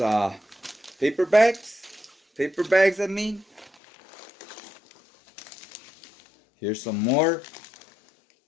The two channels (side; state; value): right; drops out; at 3.8 s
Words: paper bags, I mean. Here's some more.